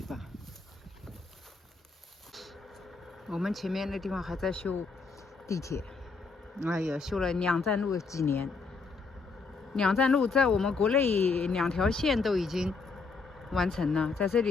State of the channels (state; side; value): quieter; right; 4.4 dB